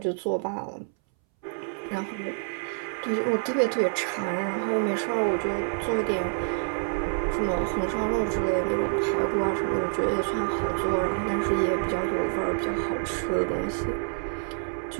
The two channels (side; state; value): left; silent; 60 dB below the other